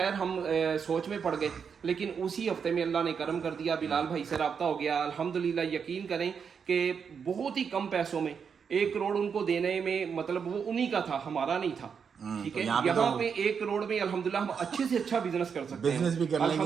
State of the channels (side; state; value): left; quieter; 6.6 dB